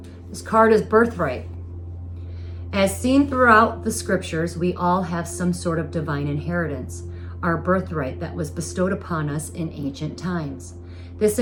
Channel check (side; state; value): both; identical; correlation 1.00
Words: This card is birthright. As seen throughout the scriptures, we all have some sort of divine inheritance, our birthright that was bestowed upon us in ancient times. This